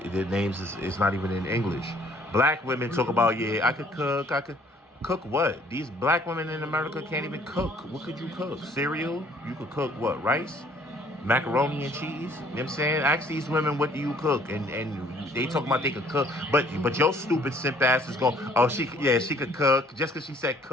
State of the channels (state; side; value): normal; both; correlation 0.59